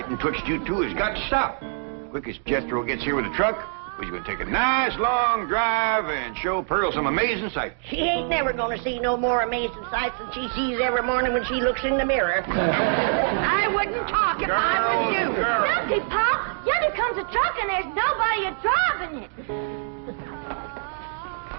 twitched you two has got to stop. Quick as Jethro gets here with the truck, we're going to take a nice long drive and show Pearl some amazing sights. She ain't never going to see no more amazing sights than she sees every morning when she looks in the mirror. I wouldn't talk if I was you. Look, Pa, yonder comes a truck and there's nobody driving it.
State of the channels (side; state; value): left; silent; digital silence